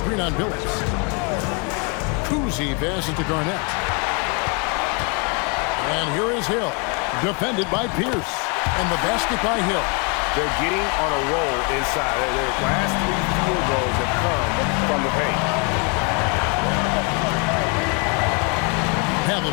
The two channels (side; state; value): right; quieter; 33.4 dB